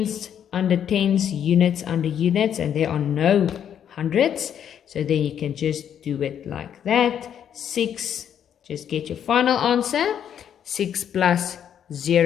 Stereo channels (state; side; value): quieter; right; 9.1 dB